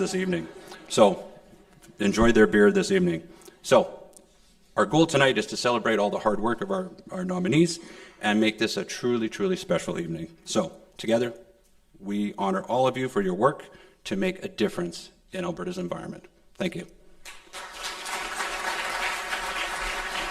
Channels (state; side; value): identical; both; correlation 1.00